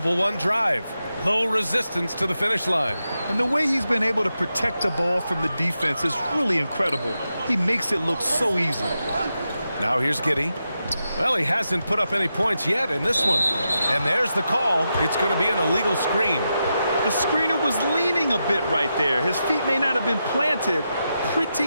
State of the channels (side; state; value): both; inverted; correlation -0.87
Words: One drive. Low resistance to the finish line. And the way he's been able to protect the ball from the defense is really incredible. He makes it look so easy. Now here's Giddey. Well, he hasn't put up any points yet in this one. And there's the call. It's going to be an illegal screen. The screener was leaning a bit right there. His feet may not have been planted.